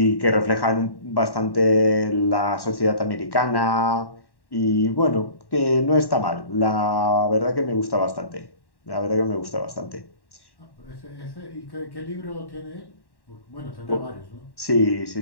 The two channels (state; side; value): late; right; 1.1 ms